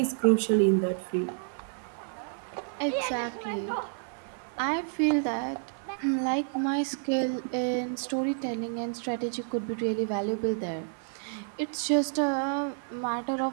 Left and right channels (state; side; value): silent; left; 58 dB below the other